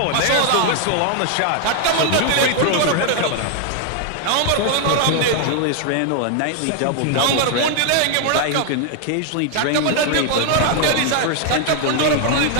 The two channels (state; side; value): different; both; correlation 0.00